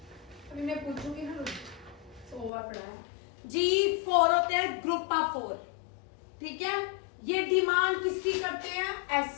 अभी मैं पूछूंगी ना, ओवर पड़ा है। G4 होते हैं ग्रुप ऑफ 4। ठीक है, ये डिमांड किसकी करते हैं?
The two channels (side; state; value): right; drops out; at 2.5 s